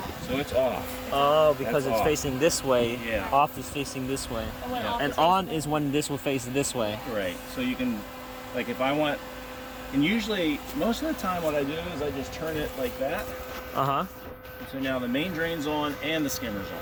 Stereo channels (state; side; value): identical; both; correlation 1.00